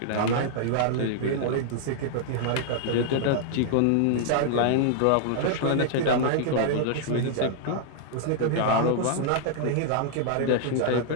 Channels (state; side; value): different; both; correlation -0.01